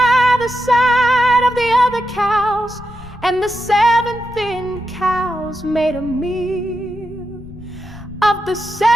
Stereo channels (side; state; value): left; noise; rumble, 19 dB below the sound